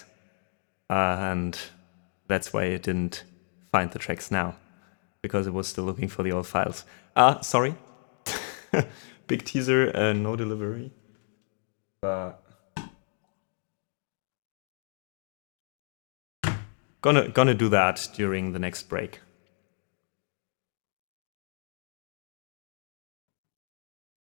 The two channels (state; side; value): silent; right; 57 dB below the other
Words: and that's why it didn't find the tracks now, because it was still looking for the old files. Sorry. Big teaser, no delivery. But gonna do that during the next break.